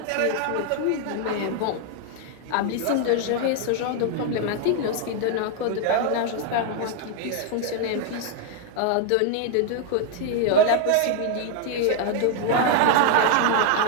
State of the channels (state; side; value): different; both; correlation 0.00